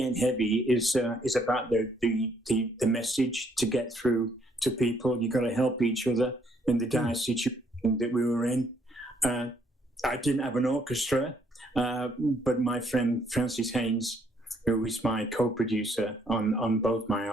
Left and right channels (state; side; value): normal; both; correlation 0.68